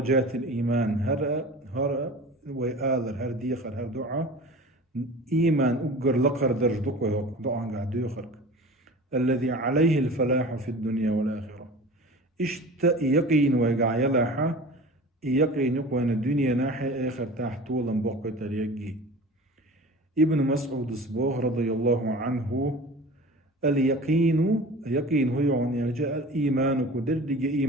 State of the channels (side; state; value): both; normal; correlation 0.38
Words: الإيمان. هر ويآذر هر ديخر هر دعاء إيمان أقر لقر درجتك دعاء قاعد يخرج الذي عليه الفلاح في الدنيا والآخرة. يقين ويقع يلاحة يقين يقوان الدنيا ناحية آخر تحت طولا بقى تريقي. ابن مسعود الصبوح رضي الله عنه اليقين هو يعني جاء الإيمان كدردج